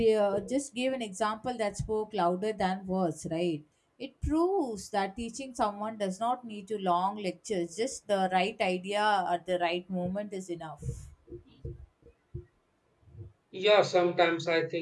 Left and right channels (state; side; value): identical; both; correlation 1.00